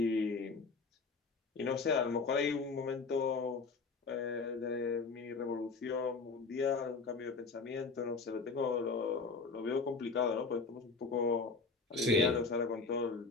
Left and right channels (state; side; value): quieter; right; 4.4 dB